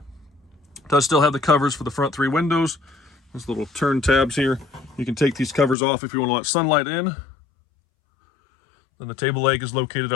does still have the covers for the front three windows. Those little turn tabs here. You can take these covers off if you want to let sunlight in. Then the table leg is located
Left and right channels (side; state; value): right; drops out; at 5.8 s